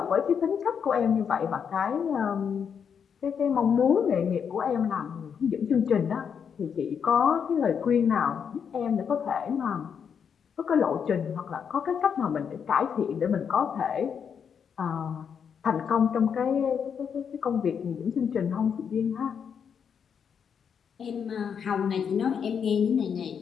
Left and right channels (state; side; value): quieter; right; 7.2 dB